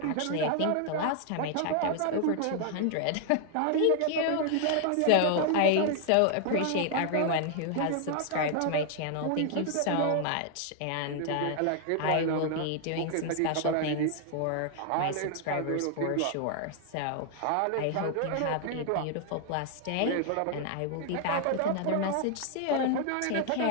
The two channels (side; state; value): both; different; correlation 0.00